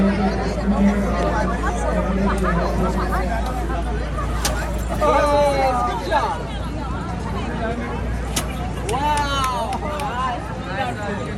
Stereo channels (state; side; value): identical; both; correlation 1.00